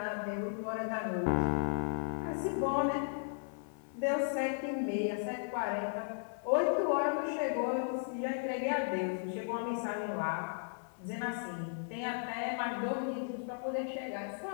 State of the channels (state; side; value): silent; right; 54 dB below the other